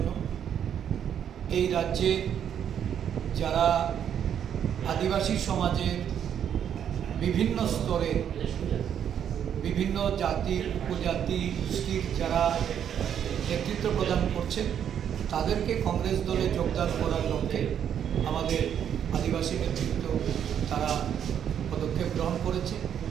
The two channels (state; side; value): quieter; left; 9.0 dB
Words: এই রাজ্যে যারা আদিবাসী সমাজের বিভিন্ন স্তরে বিভিন্ন জাতি উপজাতি গোষ্ঠীর যারা নেতৃত্ব প্রদান করছেন তাদেরকে কংগ্রেস দলে যোগদান করার লক্ষ্যে আমাদের আদিবাসী নেতৃত্ব তারা পদক্ষেপ গ্রহণ করেছে।